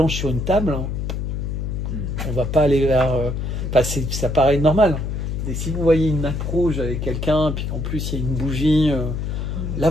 sur une table, on va pas aller vers... ça paraît normal. Et si vous voyez une nappe rouge avec quelqu'un, puis en plus il y a une bougie,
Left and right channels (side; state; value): left; noise; hum, 3 dB below the sound